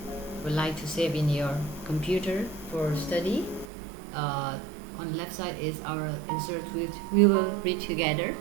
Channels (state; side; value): drops out; left; at 3.7 s